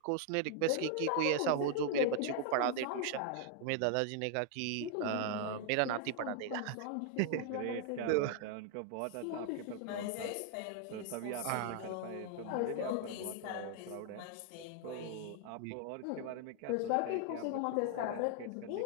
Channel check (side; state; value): both; different; correlation 0.00